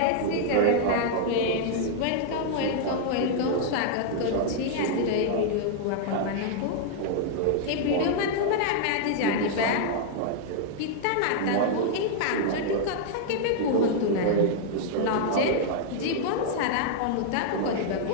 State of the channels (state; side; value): different; both; correlation -0.01